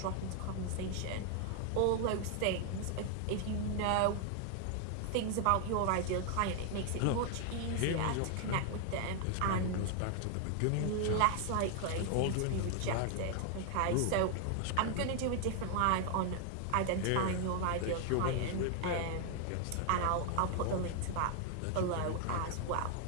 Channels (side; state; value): both; different; correlation 0.00